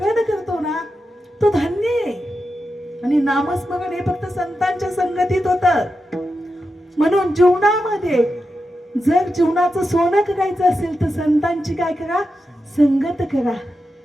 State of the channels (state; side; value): normal; both; correlation 0.89